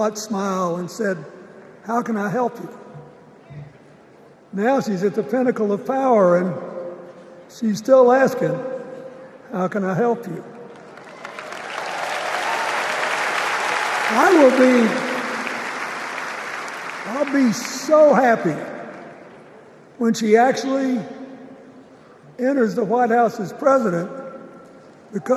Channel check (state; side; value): identical; both; correlation 1.00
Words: smile and said, "How can I help you?" Now she's at the pinnacle of power and she's still asking, "How can I help you?" I'll be so happy when she actually enters the White House as president,